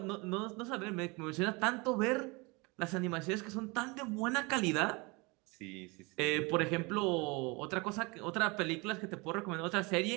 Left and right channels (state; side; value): quieter; left; 27.2 dB